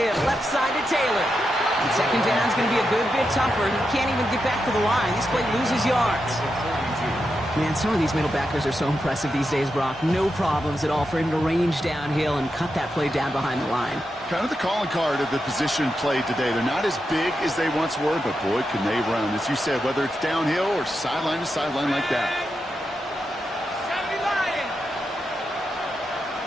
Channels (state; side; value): normal; both; correlation 0.87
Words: left side to Taylor. And second down's going to be a good bit tougher. He can't even get back to the line. This play loses yards. Man, some of these middle backers are so impressive these days, Brock. No problems at all for him to range downhill and cut that play down behind the line. Kind of the calling card of the position played today. They're not as big as they once were, but boy, can they run. As you said, whether it's downhill or sideline to sideline like that. 70 Lions.